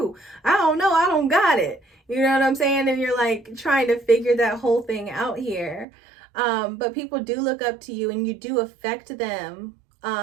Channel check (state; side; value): drops out; left; at 5.9 s